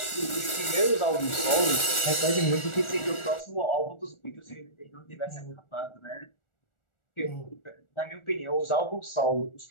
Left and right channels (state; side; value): late; right; 1.4 ms